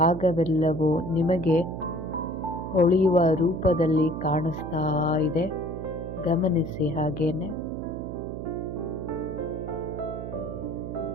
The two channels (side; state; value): right; noise; hum, 7 dB below the sound